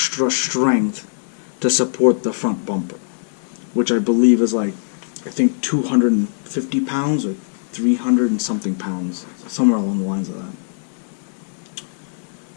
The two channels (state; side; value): silent; right; digital silence